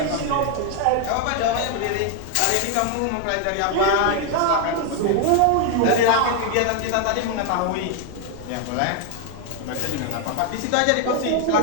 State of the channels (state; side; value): different; both; correlation 0.01